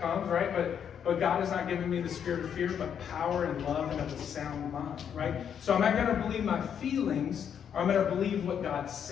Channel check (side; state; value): right; quieter; 8.2 dB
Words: comes, right? But God has not given me the spirit of fear, but power and love and of a sound mind, right? So am I going to believe my feelings, or I'm going to believe what God